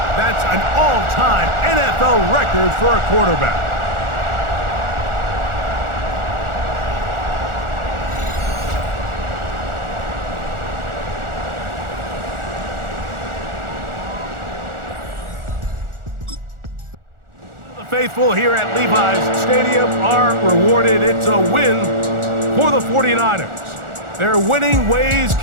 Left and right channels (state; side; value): late; left; 1.4 ms